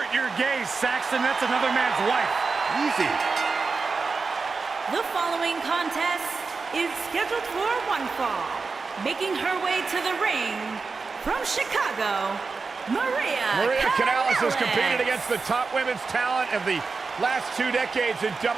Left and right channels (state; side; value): quieter; left; 4.5 dB